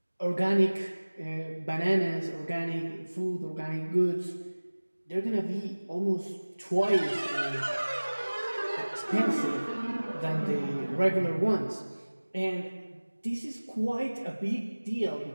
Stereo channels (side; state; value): both; inverted; correlation -1.00